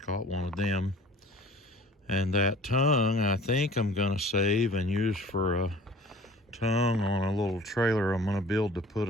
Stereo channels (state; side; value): normal; both; correlation 0.47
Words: caught one of them, and that tongue I think I'm going to save and use for a tongue on a little trailer I'm going to build to put